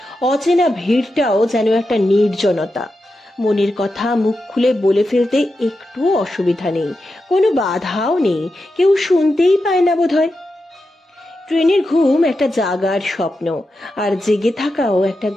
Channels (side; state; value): both; normal; correlation 0.89